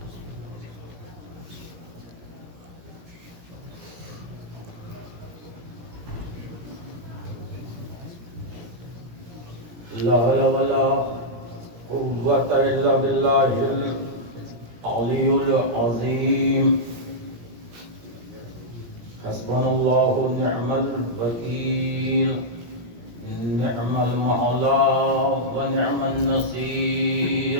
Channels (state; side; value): late; left; 17 ms